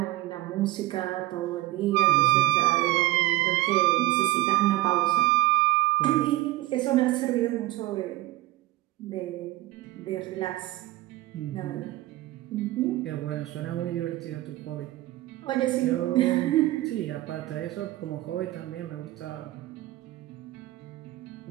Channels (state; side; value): quieter; left; 17.5 dB